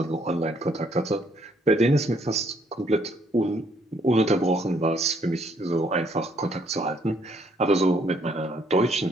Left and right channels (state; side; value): normal; both; correlation 0.67